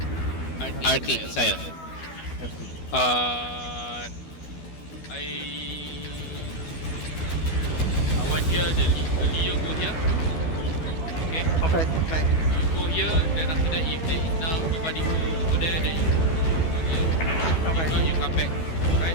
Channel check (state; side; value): late; right; 12 ms